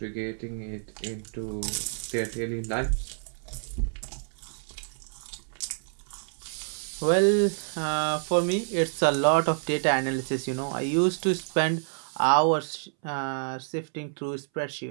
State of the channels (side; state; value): left; silent; 59 dB below the other